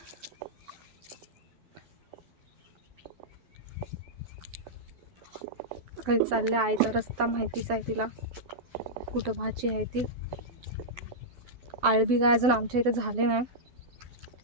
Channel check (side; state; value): left; late; 12 ms